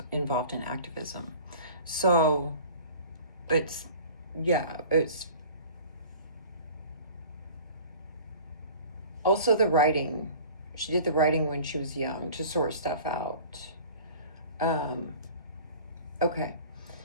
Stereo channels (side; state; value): both; inverted; correlation -0.43